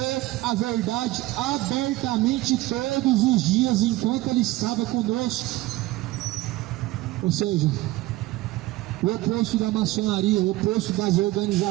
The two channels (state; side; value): quieter; left; 18.2 dB